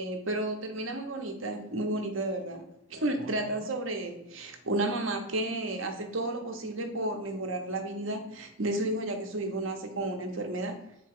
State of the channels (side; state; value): both; normal; correlation 0.04